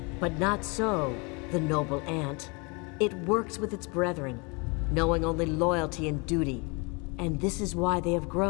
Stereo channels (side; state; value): right; quieter; 30.3 dB